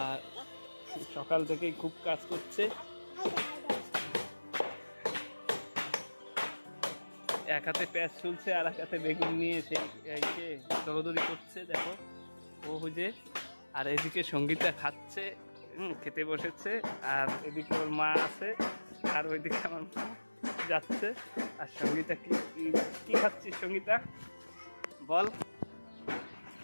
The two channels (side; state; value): both; inverted; correlation -1.00